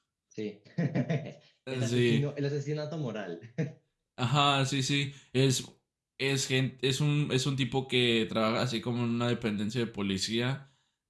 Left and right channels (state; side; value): identical; both; correlation 1.00